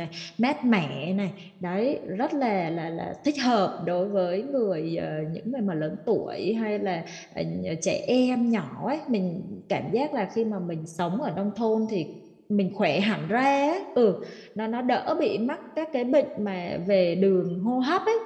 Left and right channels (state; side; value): identical; both; correlation 1.00